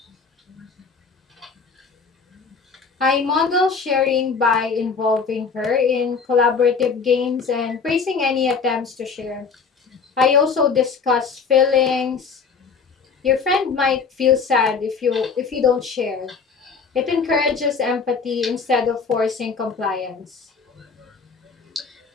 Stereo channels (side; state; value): right; quieter; 5.3 dB